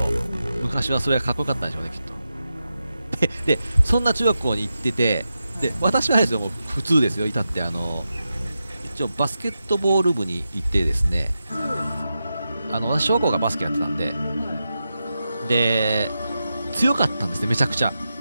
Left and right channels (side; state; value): both; inverted; correlation -0.90